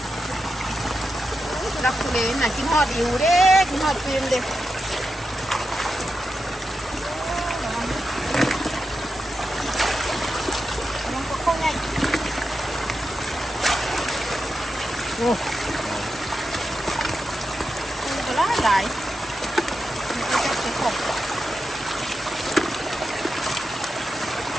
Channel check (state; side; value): normal; both; correlation 0.89